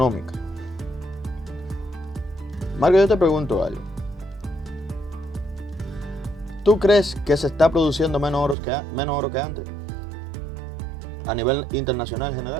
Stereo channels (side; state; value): left; drops out; at 8.6 s